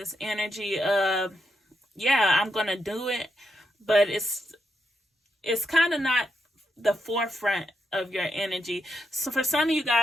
energy of, yeah, I'm going to do it. But it's kind of not the forefront of your energy. So for some of you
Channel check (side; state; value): both; normal; correlation 0.82